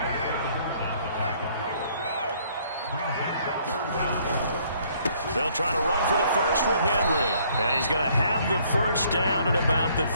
They'll try to run for the first with Henry. And he's going to have the first down at about the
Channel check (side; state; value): both; inverted; correlation -0.63